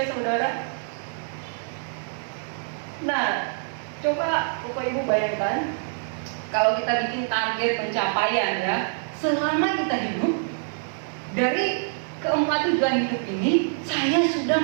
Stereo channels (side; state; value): left; silent; digital silence